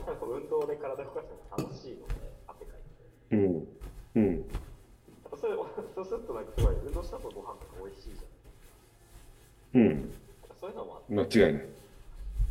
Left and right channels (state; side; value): identical; both; correlation 1.00